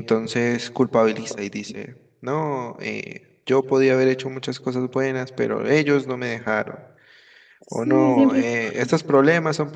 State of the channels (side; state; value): both; identical; correlation 1.00